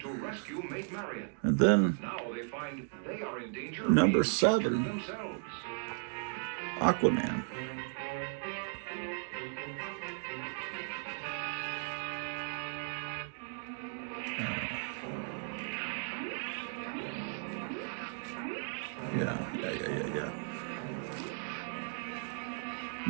And then number 7, Aquaman. Yeah.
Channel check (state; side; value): silent; left; 54 dB below the other